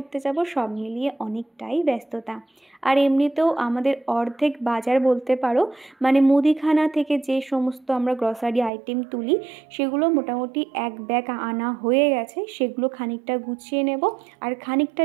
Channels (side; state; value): left; drops out; at 8.7 s